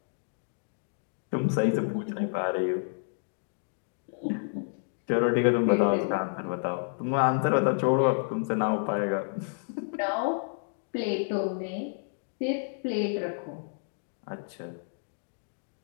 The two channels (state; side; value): silent; right; digital silence